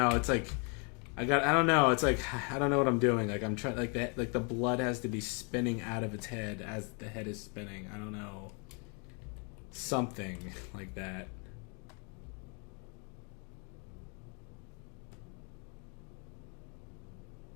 it's like... I don't know. It's like I don't know what I'm doing. Like I'm trying. Like that. Like the blood has to be spinning out of its head as the head is spinning. I don't know. Something like that.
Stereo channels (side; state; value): right; quieter; 36.7 dB